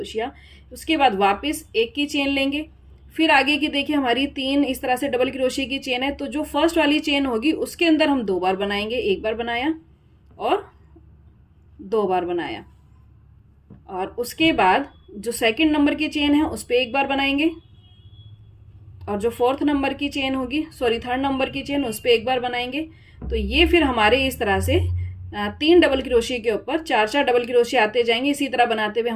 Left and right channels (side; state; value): both; identical; correlation 1.00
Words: उसके बाद वापस 1 की चेन लेंगे, फिर आगे की देखिए हमारी 3 इस तरह से डबल क्रोशिया की चेन है, तो जो फर्स्ट वाली चेन होगी उसके अंदर हम 2 बार बनाएंगे। 1 बार बनाया और 2 बार बनाया, और उसके बाद जो सेकंड नंबर की चेन है उस पर 1 बार बनाएंगे और जो थर्ड नंबर की चेन उस पर 1 बार बनाएंगे। तो ये फिर हमारे इस तरह से 3 डबल क्रोशिया के ऊपर 4-4 डबल क्रोशिया आते जाएंगे। इसी तरह बनाते हुए